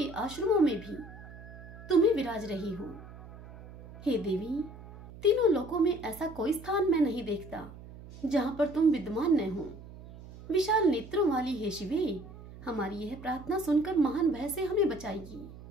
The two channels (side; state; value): right; noise; hum, 16 dB below the sound